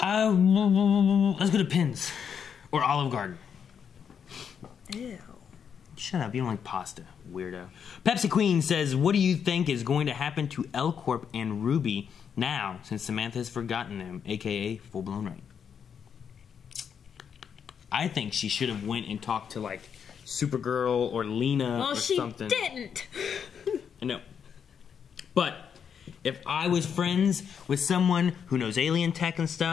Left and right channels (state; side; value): quieter; right; 7.4 dB